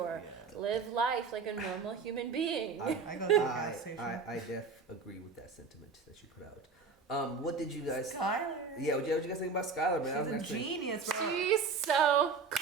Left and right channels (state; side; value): quieter; left; 4.8 dB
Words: Yeah. Live life like a normal human being. I go to the gas station. I agree with that sentiment that you put out. What did you guys? Skylar. Yeah, what you guys think about Skylar, man? She's a genius, bro. She's so